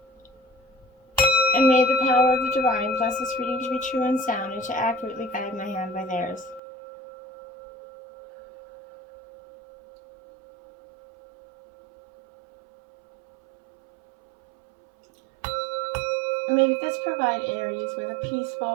And may the power of the divine bless this reading to be true and sound and to accurately guide my hand by theirs. And may this provide Aries with a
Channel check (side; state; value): left; drops out; at 6.6 s